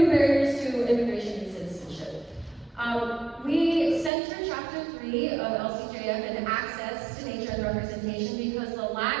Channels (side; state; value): left; drops out; at 4.1 s